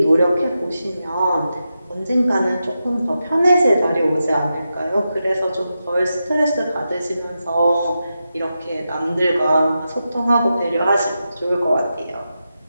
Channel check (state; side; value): inverted; both; correlation -0.89